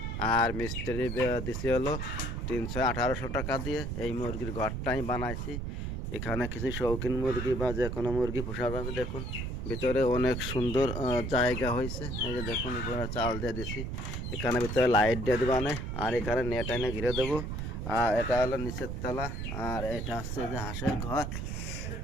আর মিস্ত্রি দিছি হলো 300-1800 টাকা দিয়ে। এই মুরগির ঘরটা আমি বানাইছি। এখানে কিছু শৌখিন মুরগি বা যে কোনো মুরগি পোষা যাবে। দেখুন ভিতরে অনেক সুন্দর জায়গা হয়েছে। এই যে দেখুন উপরে চাল দিয়ে দিছি, এখানে ভিতরে লাইট দিয়ে দেবো আর এখানে নেট এনে ঘিরে দেবো। আর এটা হলো নিচের তলা, আর এটা হচ্ছে যে হাঁসের ঘর।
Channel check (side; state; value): right; noise; rumble, 4 dB below the sound